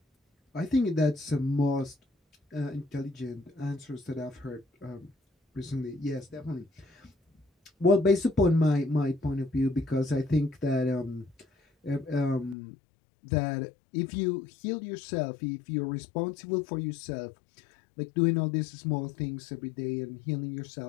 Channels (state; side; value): drops out; right; at 12.6 s